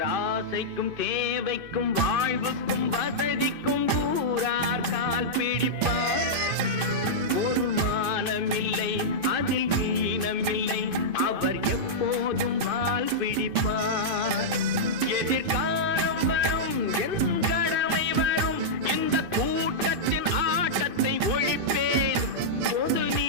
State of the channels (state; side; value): late; left; 2.5 ms